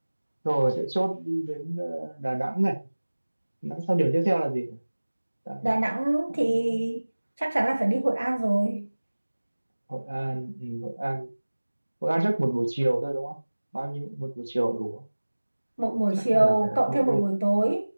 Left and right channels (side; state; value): both; inverted; correlation -1.00